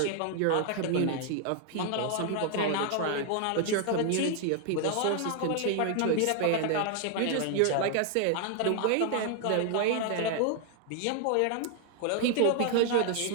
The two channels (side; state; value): both; different; correlation 0.00